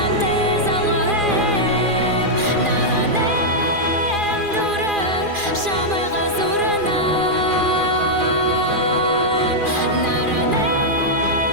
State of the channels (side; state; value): left; late; 2.4 ms